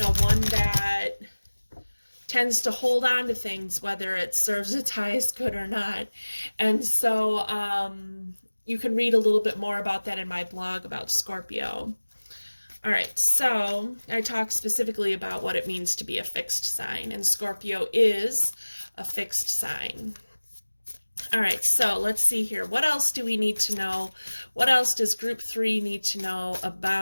one that tends to hold on to things, whether it serves its highest good or not. And so you can read a little bit more about that in my blog about Scorpio. All right, so I talk specifically about what it means to be a fixed sign, and Scorpio is a fixed sign. All right, so let's see here. What else do we need to know? What else does group 3 need to know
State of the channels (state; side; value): inverted; both; correlation -1.00